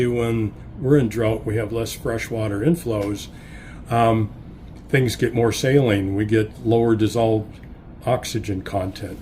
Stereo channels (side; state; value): both; identical; correlation 1.00